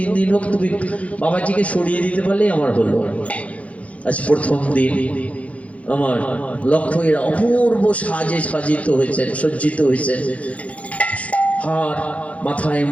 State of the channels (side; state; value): right; late; 0.065 ms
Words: দিন হোক, তুমি বাবাজিকে সরিয়ে দিতে পারলেই আমার হলো। আজ প্রথম দিন আমার লক্ষ্য এরা অপূর্ব সাজে সাজিত হয়েছেন, সজ্জিত হয়েছেন, হার, মাথায়